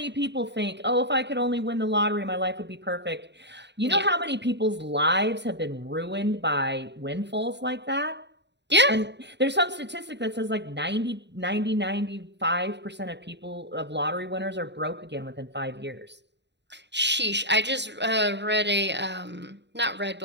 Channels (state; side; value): late; left; 0.51 ms